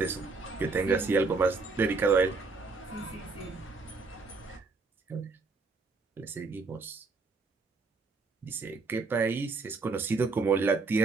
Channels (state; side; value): quieter; left; 4.1 dB